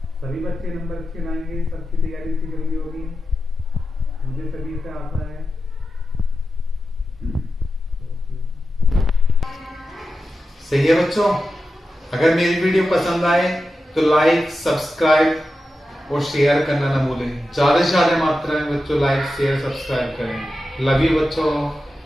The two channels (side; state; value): both; normal; correlation 0.91